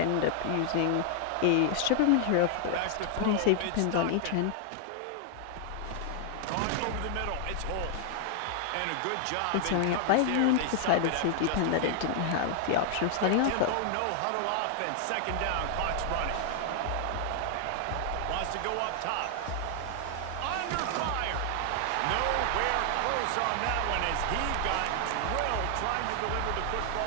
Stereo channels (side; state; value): both; different; correlation 0.00